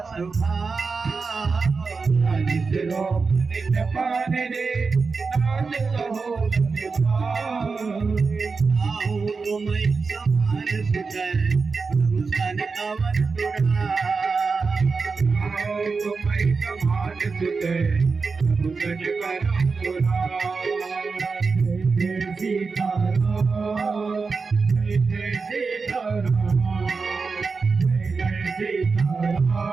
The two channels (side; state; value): left; quieter; 4.6 dB